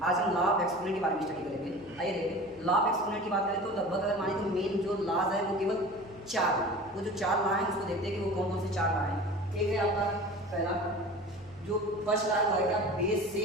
आज हम लॉ ऑफ एक्सपोनेंट के बारे में स्टडी करेंगे। आइए देखिए, लॉ ऑफ एक्सपोनेंट की बात करें तो लगभग अगर माने तो मेन जो लॉज है वो केवल 4 है। वो जो 4 लॉ हैं उसको देखते हैं कि वो कौन कौन से 4 लॉ हैं। एक है आपका पहला, जो फर्स्ट लॉ है क्या, बेस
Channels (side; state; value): right; noise; hum, 26 dB below the sound